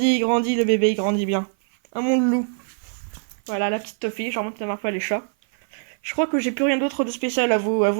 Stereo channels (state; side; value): silent; left; 55 dB below the other